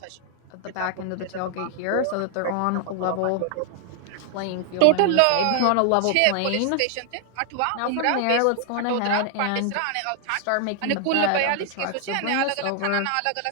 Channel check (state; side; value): different; both; correlation 0.00